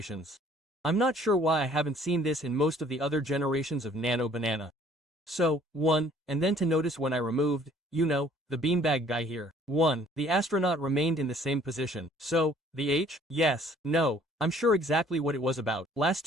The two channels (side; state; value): both; normal; correlation 0.57